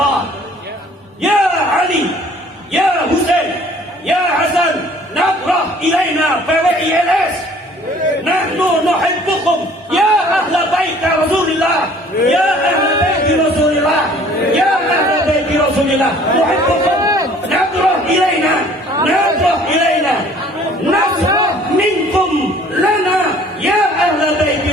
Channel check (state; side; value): normal; both; correlation 0.54